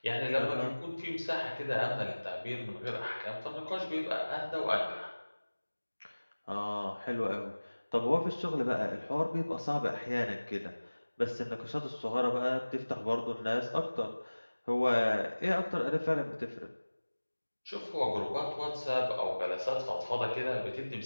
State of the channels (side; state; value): both; inverted; correlation -1.00